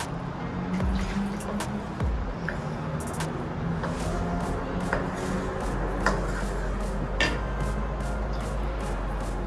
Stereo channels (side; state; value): both; identical; correlation 1.00